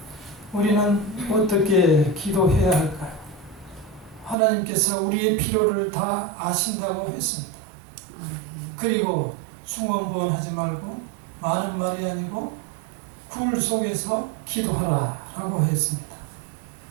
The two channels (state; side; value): drops out; left; at 4.4 s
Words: 우리는 어떻게 기도해야 할까요? 하나님께서 우리의 필요를 다 아신다고 했습니다. 그리고 중언부언하지 말고 많은 말이 아니고 굴 속에서 기도하라 라고 했습니다.